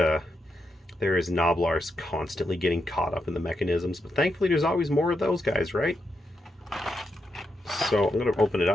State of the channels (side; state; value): both; normal; correlation 0.83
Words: there is Noblars constantly getting caught up in the mechanisms. But thankfully, there's always more of those guys, right? So I'm going to open it